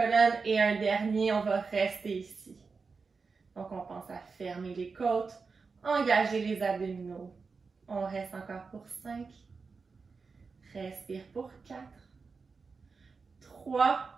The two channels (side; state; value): left; quieter; 4.7 dB